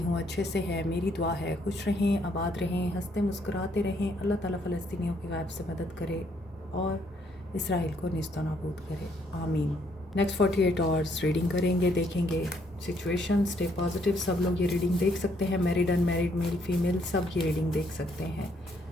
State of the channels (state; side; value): normal; both; correlation 0.70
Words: अच्छे से है। मेरी दुआ है खुश रहें, आबाद रहें, हंसते मुस्कुराते रहें। अल्लाह ताला फ़लस्तीनियों की गायब से मदद करे और इसराइल को निस्तो नाबूद करे, आमीन। नेक्स्ट 48 आवर्स रीडिंग करेंगे, देखेंगे सिचुएशन। Stay positive. सब लोग ये रीडिंग देख सकते हैं, मैरिड अनमैरिड, मेल फीमेल, सब ये रीडिंग देख सकते हैं।